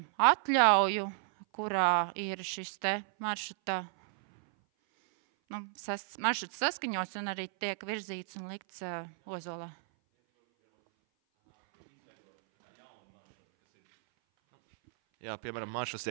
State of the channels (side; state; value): left; silent; 56 dB below the other